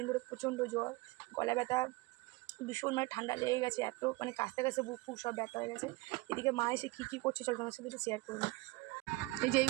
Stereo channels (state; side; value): quieter; left; 22.3 dB